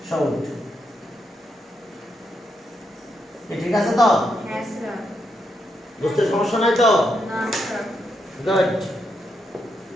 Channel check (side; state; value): both; normal; correlation 0.81